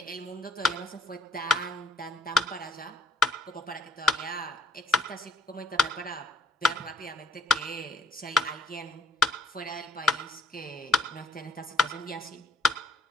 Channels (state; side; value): normal; both; correlation 0.66